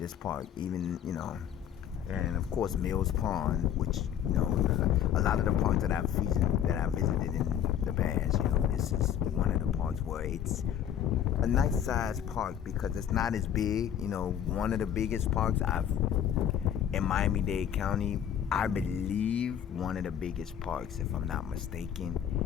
park. Even, you know, and of course Mills Pond, which, you know, a lot of the parks that I've visited in the past, you know, this is one of the parks where it's a nice sized park because it's not as big. You know, one of the biggest parks in Miami-Dade County, I believe one of the biggest parks, if I'm not mistaken,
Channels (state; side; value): quieter; right; 9.6 dB